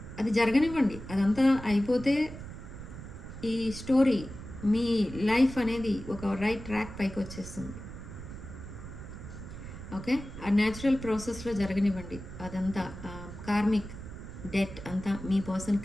అది జరగనివ్వండి, అదంతా అయిపోతే ఈ స్టోరీ మీ లైఫ్ అనేది ఒక రైట్ ట్రాక్ పైకి వచ్చేస్తుంది. ఓకే, ఆ న్యాచురల్ ప్రాసెస్లో జరగనివ్వండి. అదంతా కార్మిక్ డెట్ అంతా మీ పర్సన్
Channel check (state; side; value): noise; right; rumble, 12 dB below the sound